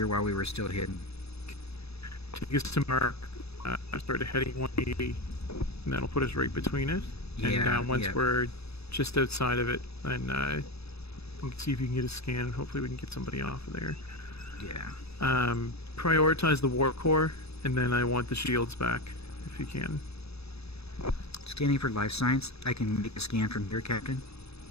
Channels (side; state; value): right; late; 0.79 ms